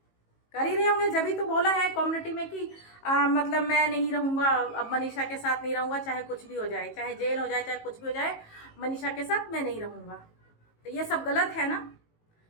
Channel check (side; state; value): right; late; 18 ms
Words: कर ही रहे होंगे। जब ही तो बोला है कम्युनिटी में कि मतलब मैं नहीं रहूँगा, अब मनीषा के साथ नहीं रहूँगा, चाहे कुछ भी हो जाए, चाहे जेल हो जाए, चाहे कुछ भी हो जाए, मनीषा के साथ मैं नहीं रहूँगा। तो ये सब गलत है ना,